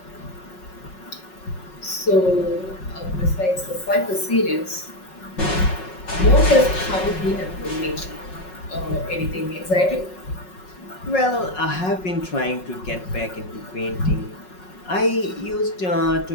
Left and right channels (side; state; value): right; late; 5.4 ms